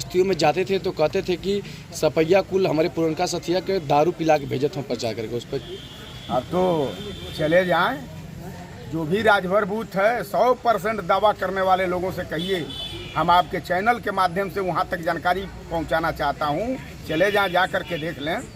में जाते थे तो कहते थे कि सपैया कुल हमारे पुरनका सथिया के दारू पिला के भेजत हम प्रचार करके उस पर। अब तो चले जाएं, जो भी राजभर बूथ है 100% दावा करने वाले लोगों से कहिए, हम आपके चैनल के माध्यम से वहां तक जानकारी पहुंचाना चाहता हूं। चले जाएं, जा कर के देख लें।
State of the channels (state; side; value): identical; both; correlation 1.00